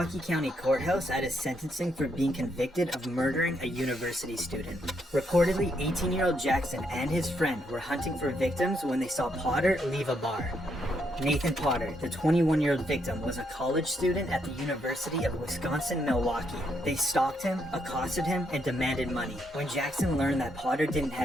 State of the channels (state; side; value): normal; both; correlation 0.76